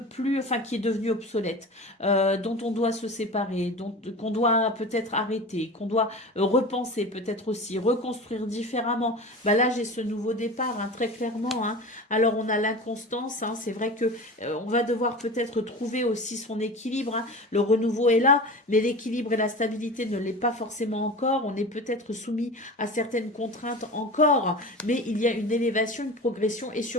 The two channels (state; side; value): normal; both; correlation 0.32